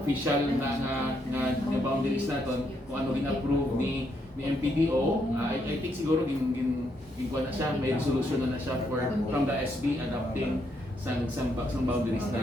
official na boundaries naton kung ano approve ni MPDO. I think siguro gin na siya, may resolution na siya from the SB adopting sang boundaries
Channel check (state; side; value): normal; both; correlation 0.76